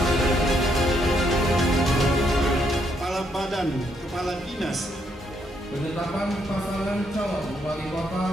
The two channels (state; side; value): normal; both; correlation 0.74